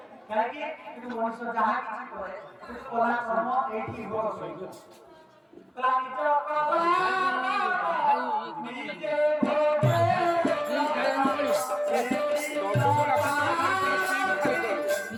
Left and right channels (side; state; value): both; identical; correlation 1.00